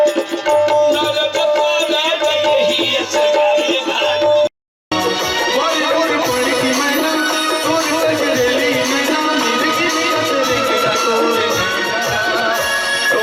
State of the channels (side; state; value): both; identical; correlation 1.00